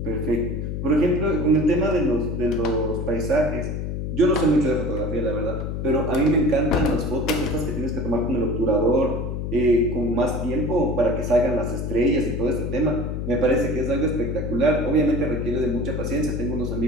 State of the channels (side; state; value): left; noise; hum, 3 dB below the sound